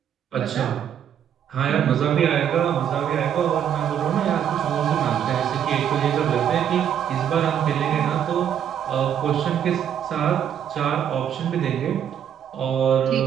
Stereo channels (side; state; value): left; quieter; 9.1 dB